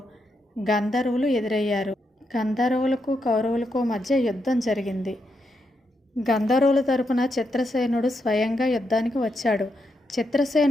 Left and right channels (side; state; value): both; normal; correlation 0.82